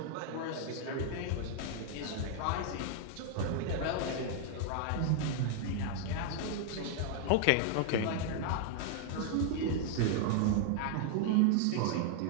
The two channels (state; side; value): different; both; correlation 0.00